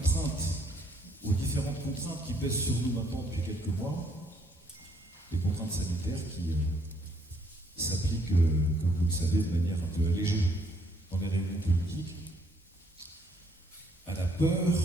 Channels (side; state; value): both; normal; correlation 0.68